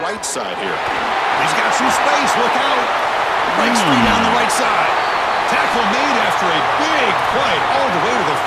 right side here. He's got some space, look out. Breaks free down the right side. Tackle made after a big play all the way to the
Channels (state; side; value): identical; both; correlation 1.00